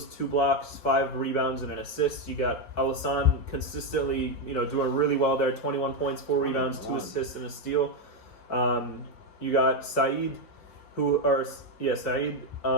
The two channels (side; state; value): right; late; 5.2 ms